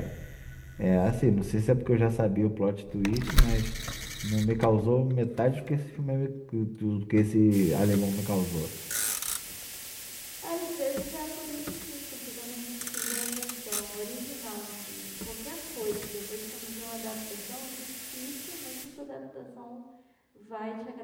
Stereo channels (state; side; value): identical; both; correlation 1.00